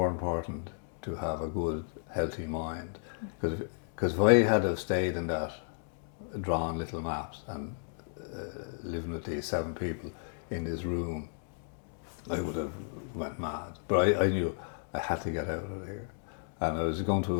important to have a good, healthy mind. Because if I had have stayed in that, drawn little maps and living with these 7 people in this room, I would have went mad. But I knew I had to get out of here. And I was going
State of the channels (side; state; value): right; silent; digital silence